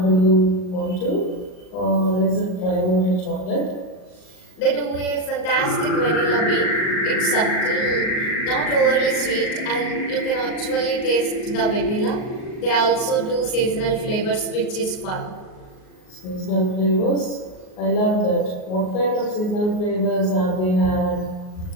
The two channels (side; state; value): right; late; 38 ms